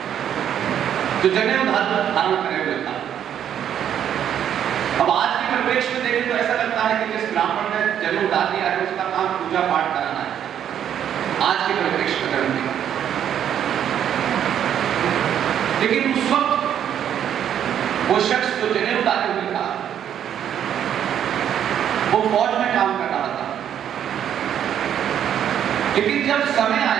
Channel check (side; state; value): left; quieter; 9.6 dB